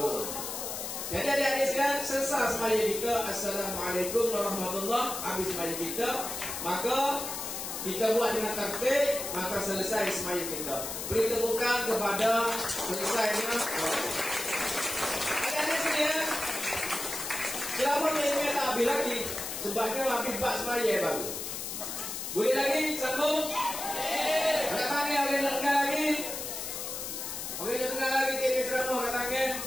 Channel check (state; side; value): noise; left; hiss, 5 dB below the sound